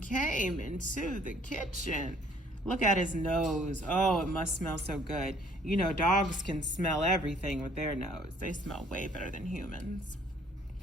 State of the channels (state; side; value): normal; both; correlation 0.59